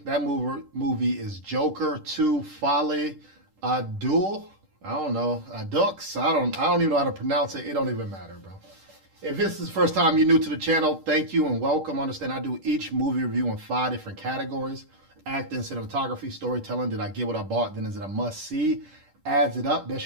that movie is Joker 2 Folie, Deux. I don't know, Dux. I don't even know how to pronounce it. It don't even matter, bro. If this is the first time you're new to the channel, thank you and welcome. Understand I do each movie review in 5 different categories: acting, cinematography, storytelling. Did I get what I bought? Then is it a must see? Adds it up.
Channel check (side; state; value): left; late; 10 ms